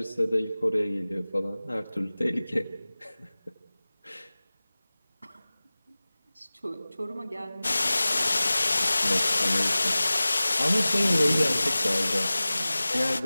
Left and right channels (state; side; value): inverted; both; correlation -0.98